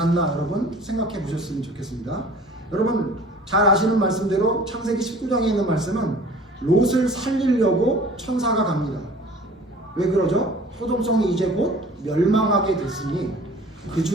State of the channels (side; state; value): both; normal; correlation 0.47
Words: 여러분 생각해 보셨으면 좋겠습니다. 여러분 잘 아시는 말씀대로 창세기 19장에 있는 말씀은 롯을 살리려고 천사가 갑니다. 왜 그러죠? 소돔성이 이제 곧 멸망하게 됐으니 그